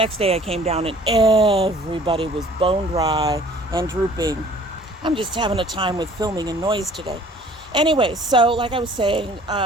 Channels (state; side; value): normal; both; correlation 0.52